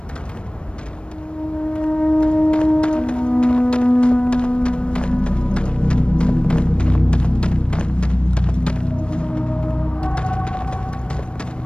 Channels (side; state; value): right; late; 0.056 ms